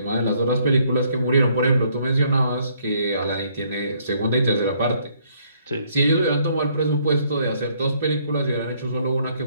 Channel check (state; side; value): inverted; both; correlation -0.67